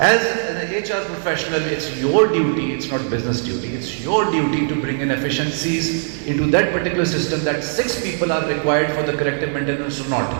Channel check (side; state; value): left; silent; digital silence